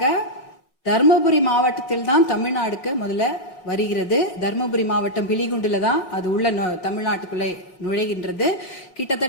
தர்மபுரி மாவட்டத்தில் தான் தமிழ்நாடுக்கு முதல்ல வருகிறது. தர்மபுரி மாவட்டம் பிலிகுண்டுல தான் அது உள்ள தமிழ்நாட்டுக்குள்ளே நுழைகின்றது.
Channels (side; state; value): right; late; 5.5 ms